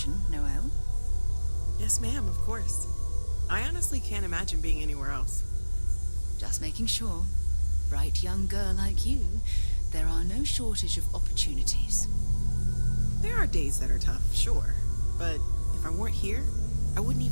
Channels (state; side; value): inverted; both; correlation -1.00